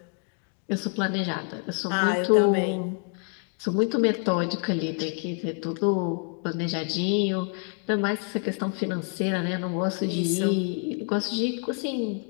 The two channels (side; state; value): right; quieter; 39.7 dB